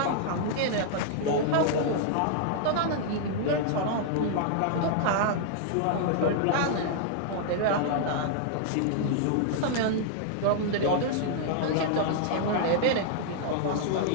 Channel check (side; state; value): both; different; correlation -0.01